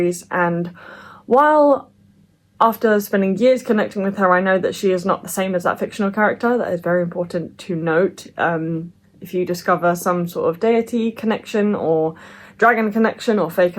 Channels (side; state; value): both; identical; correlation 1.00